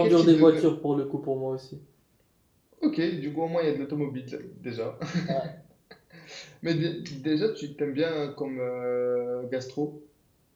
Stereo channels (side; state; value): both; identical; correlation 1.00